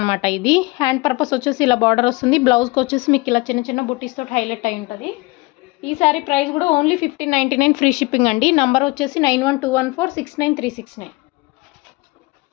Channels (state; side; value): quieter; right; 24.2 dB